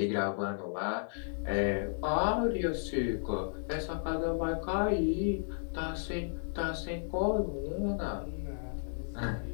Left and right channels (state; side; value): silent; right; digital silence